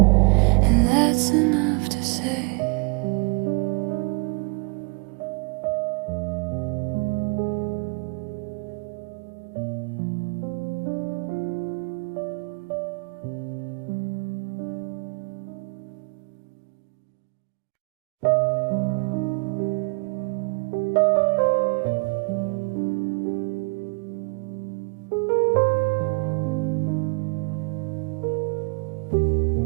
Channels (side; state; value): left; quieter; 30.9 dB